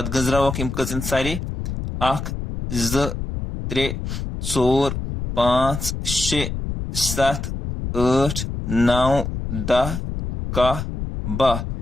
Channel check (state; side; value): noise; left; rumble, 5 dB below the sound